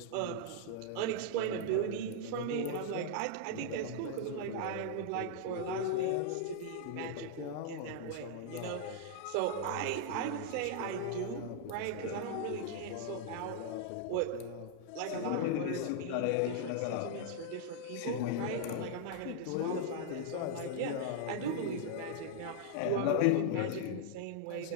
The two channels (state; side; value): different; both; correlation 0.00